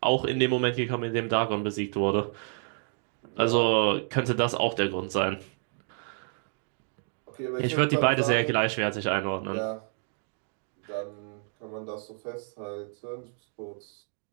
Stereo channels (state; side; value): silent; left; 58 dB below the other